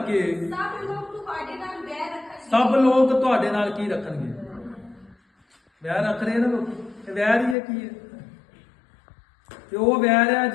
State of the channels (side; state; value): right; drops out; at 7.6 s